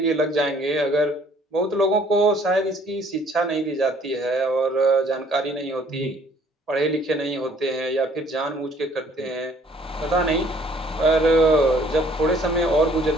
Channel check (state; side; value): normal; both; correlation 0.59